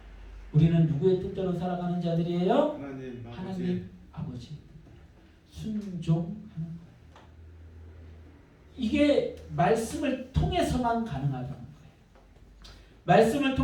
우리는 누구의 뜻대로 살아가는 자들이에요? 하나님 아버지의 뜻대로 순종하는 거예요. 이게 말씀을 통해서만 가능하다는 거예요. 말씀을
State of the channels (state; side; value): identical; both; correlation 1.00